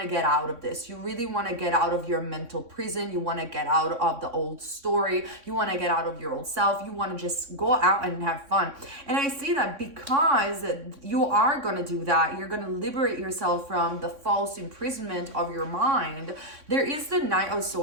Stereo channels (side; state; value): left; late; 3.6 ms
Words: to get out of this. You really want to get out of your mental prison. You want to get out of the old story. You want to get out of your old self. You want to just go out and have fun. And I see that because you are going to do that, you're going to liberate yourself from the false imprisonment of your mind. There is the Knight of